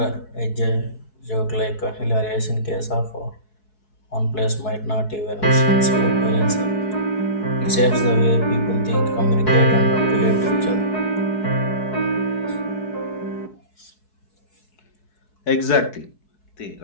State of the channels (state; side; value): late; right; 4.6 ms